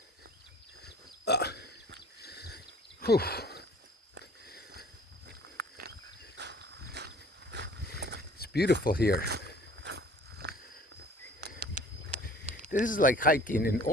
Whew. It's beautiful here. This is like hiking in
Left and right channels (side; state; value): both; normal; correlation 0.50